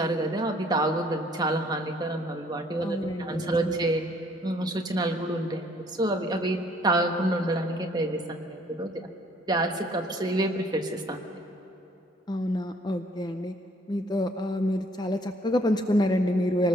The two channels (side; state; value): both; normal; correlation 0.61